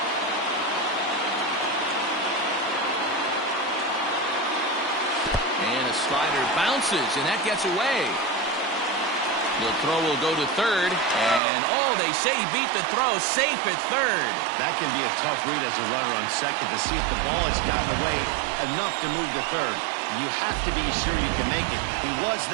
And a slider bounces, and that gets away. The throw will go to third, and they say he beat the throw, safe at third. That can be a tough read as a runner on second to see if the ball has gotten away enough to move to third. You have to be sure you can make it. He was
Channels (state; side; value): drops out; left; at 11.4 s